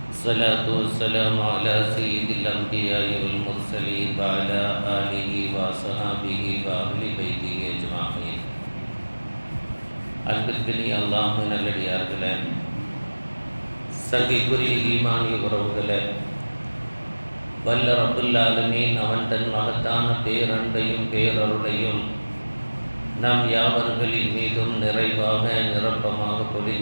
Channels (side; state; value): both; inverted; correlation -1.00